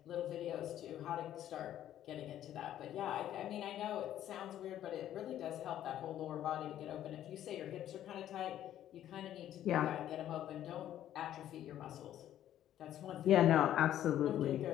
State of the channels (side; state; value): right; quieter; 11.8 dB